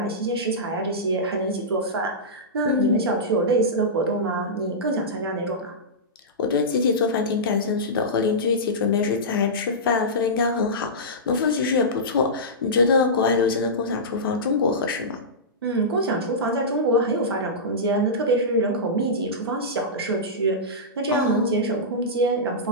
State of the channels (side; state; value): both; normal; correlation -0.15